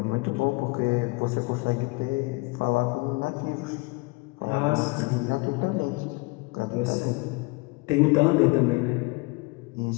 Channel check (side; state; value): right; quieter; 26.3 dB